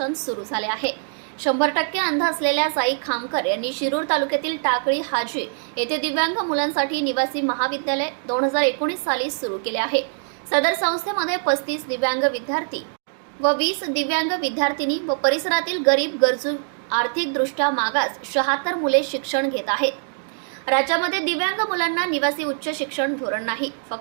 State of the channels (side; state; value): left; silent; 63 dB below the other